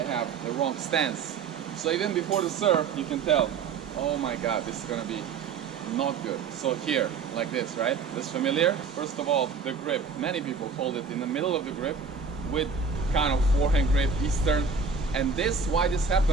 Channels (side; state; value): left; quieter; 5.3 dB